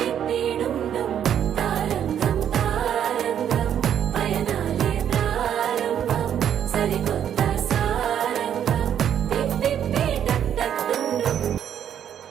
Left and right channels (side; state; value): left; quieter; 9.4 dB